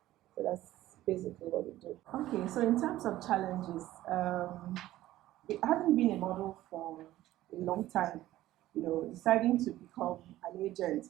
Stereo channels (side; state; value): left; quieter; 15.0 dB